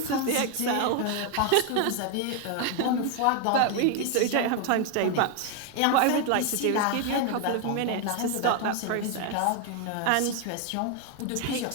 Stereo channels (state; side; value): different; both; correlation 0.01